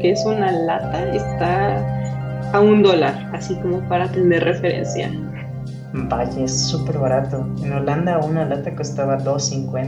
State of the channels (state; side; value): identical; both; correlation 1.00